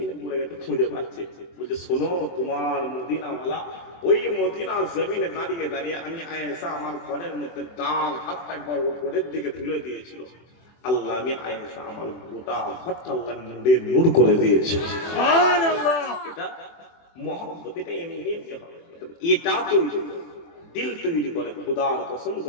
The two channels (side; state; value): right; late; 24 ms